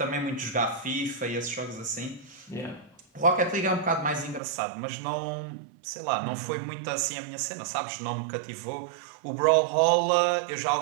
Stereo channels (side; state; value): left; drops out; at 4.4 s